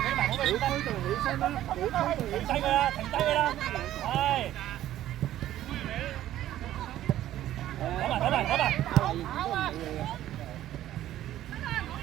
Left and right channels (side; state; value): left; quieter; 13.1 dB